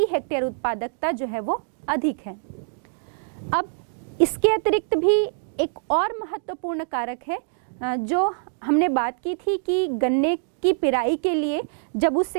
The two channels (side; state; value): left; silent; digital silence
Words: हेक्टेयर उत्पादकता जो है वो अधिक है। अब इसके अतिरिक्त भी एक और महत्वपूर्ण कारक है जो हमने बात की थी कि गन्ने की पिराई के लिए जब